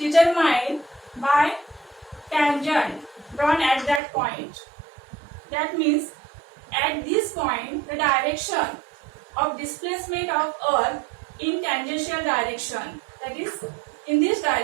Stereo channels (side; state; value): left; drops out; at 4.0 s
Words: by tangent drawn at that point. That means at this point the direction of displacement of earth in tangential direction, that is in this